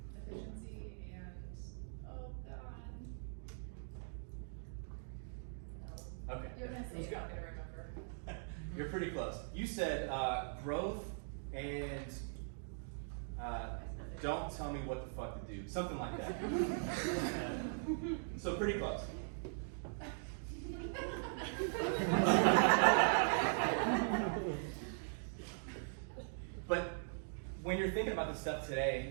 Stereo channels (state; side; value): silent; left; digital silence